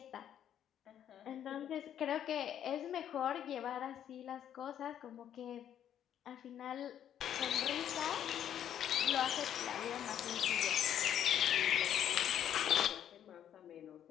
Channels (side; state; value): right; quieter; 10.0 dB